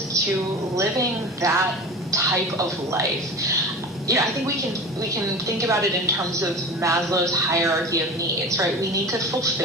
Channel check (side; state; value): both; normal; correlation 0.33